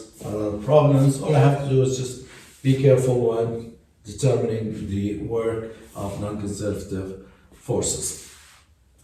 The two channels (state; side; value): identical; both; correlation 1.00